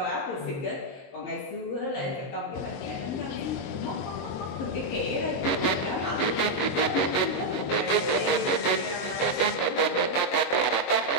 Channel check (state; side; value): late; right; 22 ms